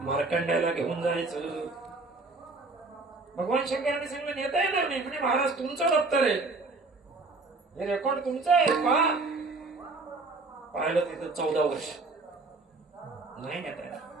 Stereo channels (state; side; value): quieter; left; 3.5 dB